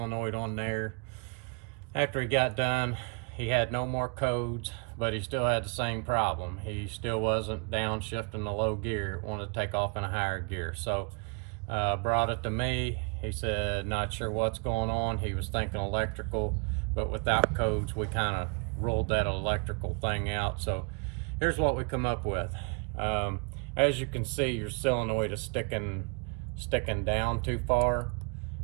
on there. After he got done, he had no more codes, but he still had the same problem. He still wasn't downshifting the low gear. It wanted to take off in a higher gear. So brought it to me. He said, not sure what's going on. He was thinking electrical, but without codes, we kind of ruled that electrical thing out. So here's what we come up with. As you can see, your solenoid is sticking down too far.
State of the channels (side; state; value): left; quieter; 33.0 dB